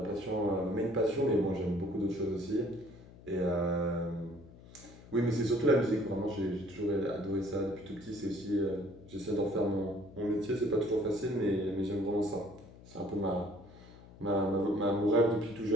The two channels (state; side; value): noise; left; hum, 20 dB below the sound